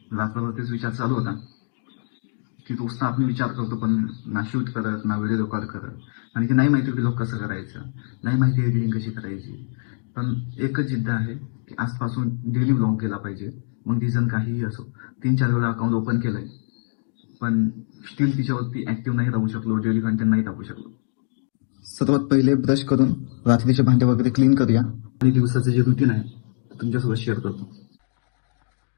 रात्रभर तेच विचार चालू होता की रोज आपण विचार करतो, पण ना शूट करत, ना व्हिडिओ रेकॉर्ड करत, आणि की नाही माहिती व्लॉग कसं करायचं, नाही माहिती एडिटिंग कशी करायची. पण एकच जिद्द आहे की आजपासून डेली व्लॉग केला पाहिजे. मग रिझन काहीही असो. 3-4 वेळा अकाउंट ओपन केलंय, पण स्टील तिच्यावरती ऍक्टिव्ह नाही राहू शकलो, डेली कंटेंट नाही टाकू शकलो. सर्वात पहिले ब्रश करून रात्रीचे भांडे वगैरे क्लीन करूया आणि दिवसाचं जे रुटीन आहे ते तुमच्यासोबत शेअर करतो.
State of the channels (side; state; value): right; silent; 63 dB below the other